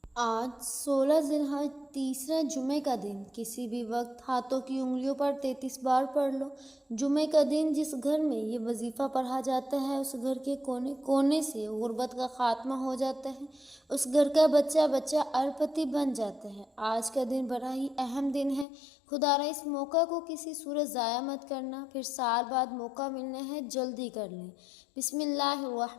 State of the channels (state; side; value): drops out; right; at 18.7 s